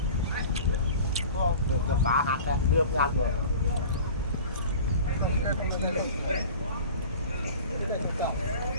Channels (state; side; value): inverted; both; correlation -0.40